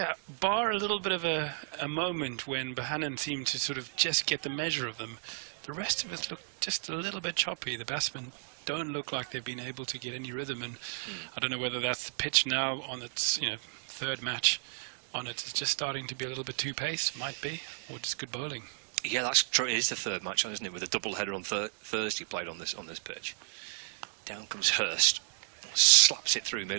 bar a little bit of a moment when Bohannon seemed to sort of just get the measure of them. The rest of us look just a little bit choppy. The batsmen don't look like they've been able to get any rhythm, and I don't know whether that's the pitch now on its 3rd match on it. It's just starting to be a little bit too paced, might be, or just good bowling. Yeah, that's true. It is the 3rd match on, isn't it? With a double header on Thursday played on this pitch. Down comes Hurst, slaps it through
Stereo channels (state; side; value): silent; left; 56 dB below the other